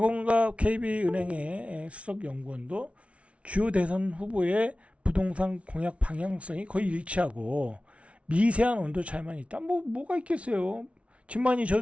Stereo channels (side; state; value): left; late; 0.062 ms